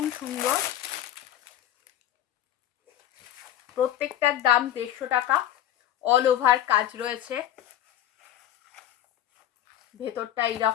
সুন্দর, প্রত্যেকটার দাম 150 টাকা। অল ওভার কাজ রয়েছে, ভেতরটা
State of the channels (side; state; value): right; quieter; 11.7 dB